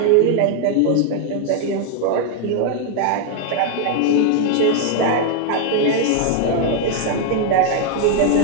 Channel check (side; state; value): both; different; correlation 0.00